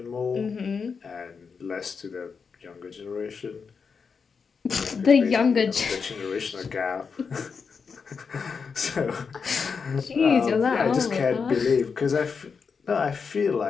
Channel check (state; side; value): quieter; right; 5.6 dB